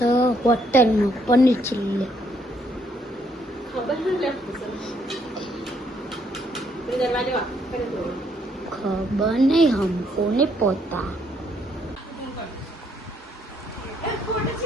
હોટલમાં પનીર ચીલ્લી. ખબર નહીં હમકો ને પોતા.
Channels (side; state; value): both; normal; correlation 0.70